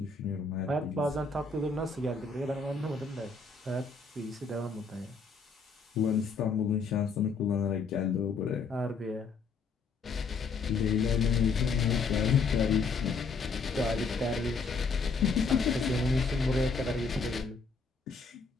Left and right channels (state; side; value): quieter; right; 4.6 dB